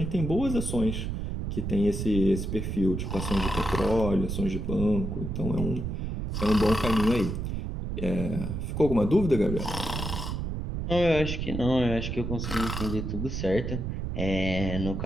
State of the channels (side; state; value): right; noise; rumble, 3 dB below the sound